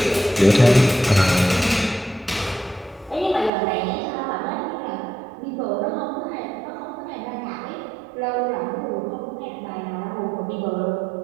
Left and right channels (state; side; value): drops out; left; at 3.5 s